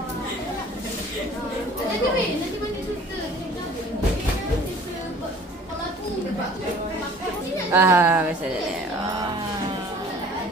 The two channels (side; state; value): both; normal; correlation 0.50